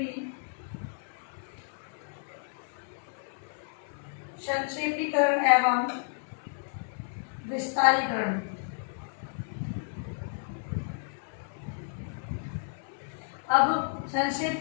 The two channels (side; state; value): right; silent; 57 dB below the other